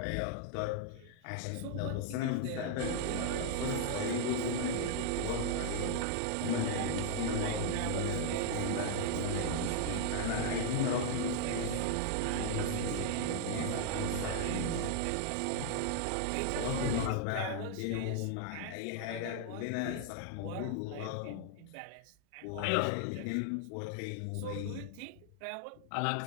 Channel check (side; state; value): both; different; correlation -0.01